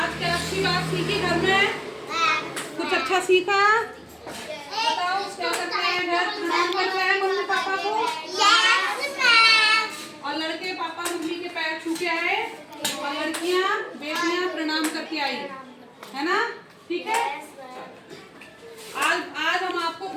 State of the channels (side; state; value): both; identical; correlation 1.00